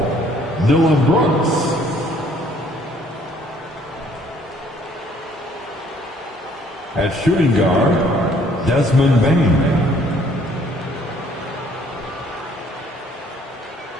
Dylan Brooks. At shooting guard, Desmond Bain.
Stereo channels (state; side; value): normal; both; correlation 0.61